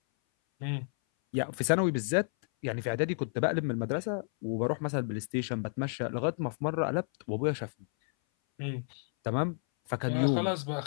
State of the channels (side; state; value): right; silent; 57 dB below the other